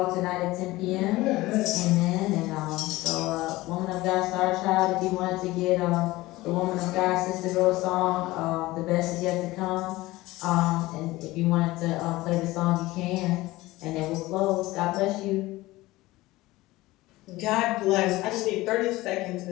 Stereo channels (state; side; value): quieter; right; 18.9 dB